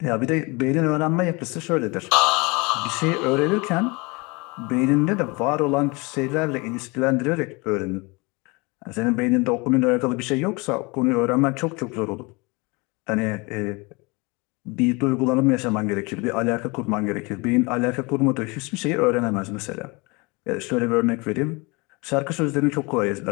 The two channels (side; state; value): right; quieter; 27.2 dB